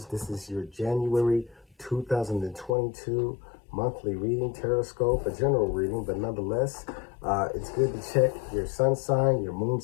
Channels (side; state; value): right; drops out; at 2.7 s